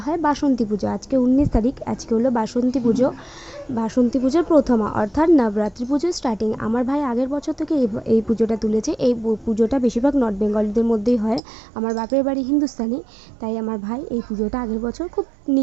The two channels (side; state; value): left; drops out; at 11.4 s